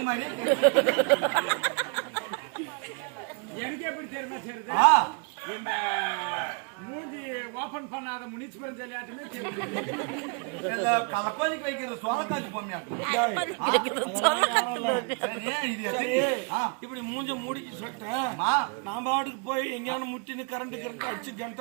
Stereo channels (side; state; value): left; quieter; 36.5 dB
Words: மாதிரி எனக்கு எப்படி தெரியுமா தெரியுது, இந்த மூஞ்சி ஓபன் பண்ணாத முனிசிபல் விளையாட்டுமே கலப்பானிக்கு வைக்கிற சோளக்காத்து இப்படி மூஞ்ச மூடிக்கு சட்ட நான் பாட்டுக்கு போய் எங்கேயான முட்டின்னு கரண்ட் அடிச்சு